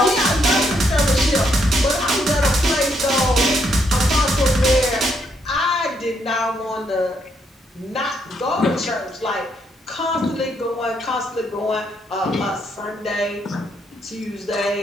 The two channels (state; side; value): normal; both; correlation 0.74